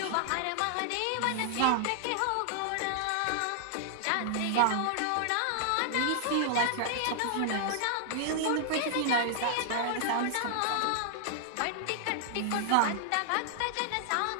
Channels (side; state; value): both; different; correlation -0.01